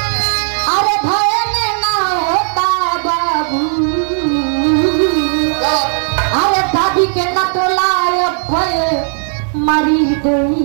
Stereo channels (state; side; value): silent; left; 70 dB below the other